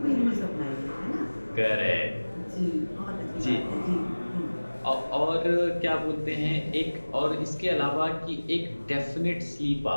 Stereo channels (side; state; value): both; inverted; correlation -1.00